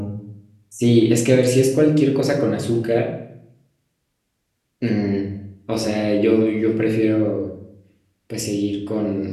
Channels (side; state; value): both; identical; correlation 1.00